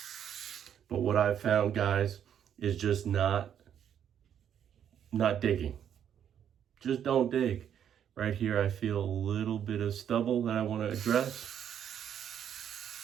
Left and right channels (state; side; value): quieter; left; 9.2 dB